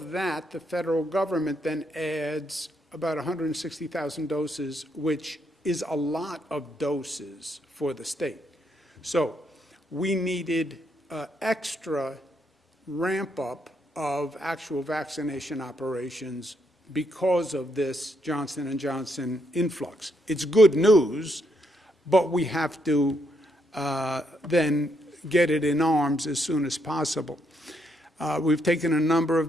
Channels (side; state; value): both; normal; correlation 0.76